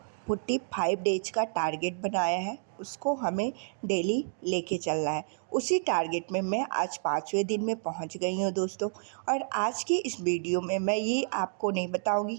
45 डेज का टारगेट बनाया है उसको हमें डेली लेके चलना है। उसी टारगेट में मैं आज 5वें दिन में पहुंच गई हूं दोस्तों। और आज की इस वीडियो में मैं ये आपको नहीं बताऊंगी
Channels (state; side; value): silent; left; digital silence